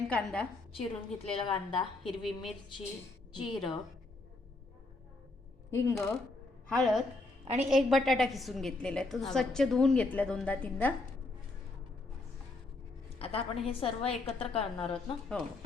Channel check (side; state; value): right; quieter; 3.1 dB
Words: कांदा, चिरून घेतलेला कांदा, हिरवी मिरची, जिरं, हिंग, हळद आणि एक बटाटा किसून घेतलेला आहे. तो स्वच्छ धुवून घेतला 2दा-3दा. आता आपण हे सर्व एकत्र करणार आहोत ना. हो,